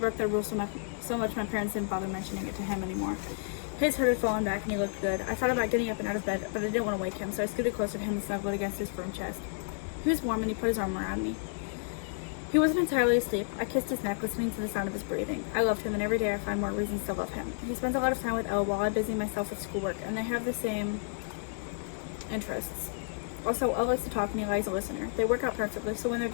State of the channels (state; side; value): silent; right; digital silence